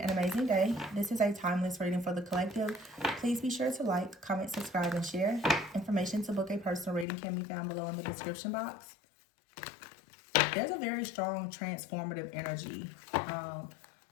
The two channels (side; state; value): right; drops out; at 7.1 s